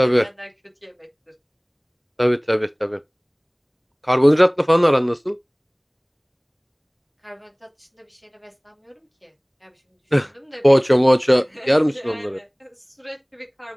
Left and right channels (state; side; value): identical; both; correlation 1.00